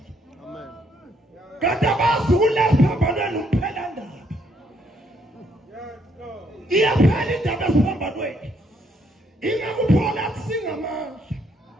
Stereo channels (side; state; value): both; normal; correlation 0.71